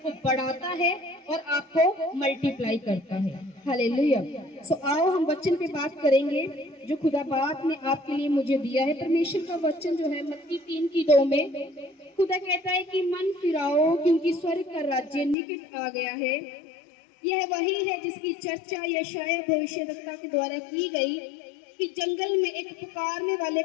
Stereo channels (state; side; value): drops out; right; at 15.4 s